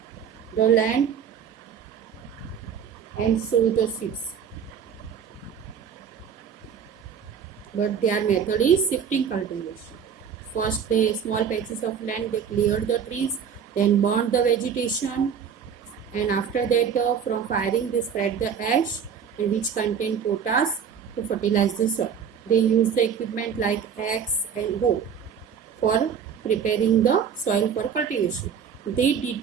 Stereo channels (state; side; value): quieter; left; 7.4 dB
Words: the land and sow the seeds, but their method is shifting cultivation. First, the small patches of land, they cleared the trees, then burned the vegetation, and after that from firing they spread the ash, and which contain potash to fertilize the soil. They use the equipment like axe and hoe for preparing the soil for cultivation. They